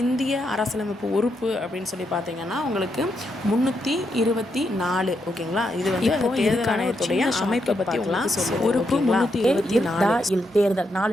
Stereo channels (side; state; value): both; normal; correlation 0.81